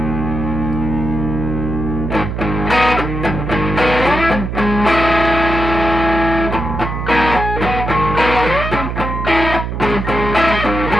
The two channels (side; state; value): right; noise; hum, 4 dB below the sound